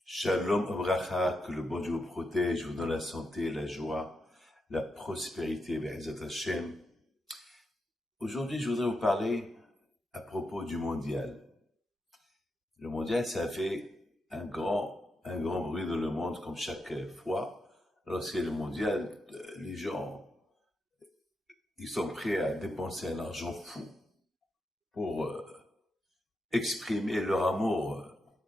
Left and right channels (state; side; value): normal; both; correlation 0.85